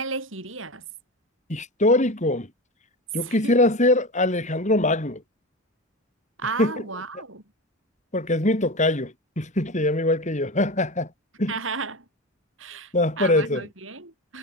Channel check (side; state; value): both; normal; correlation 0.25